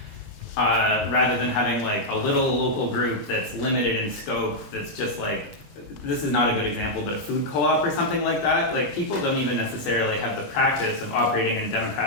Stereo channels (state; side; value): normal; both; correlation -0.04